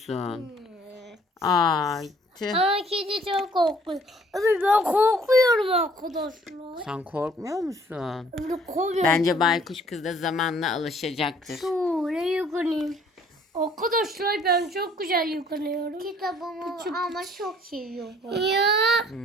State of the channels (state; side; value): normal; both; correlation 0.59